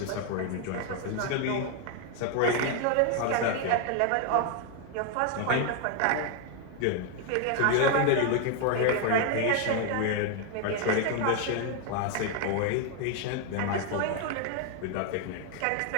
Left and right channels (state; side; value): different; both; correlation 0.01